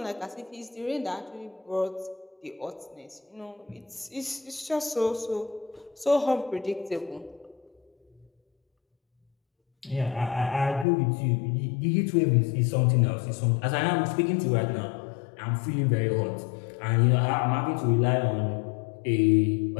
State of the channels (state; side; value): drops out; right; at 10.9 s